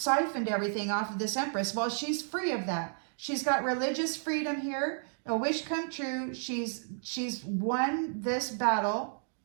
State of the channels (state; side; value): silent; left; digital silence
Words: everything off of this empress. Well, she's free of that. She's got religious freedom here. A wish come true. She's won this battle.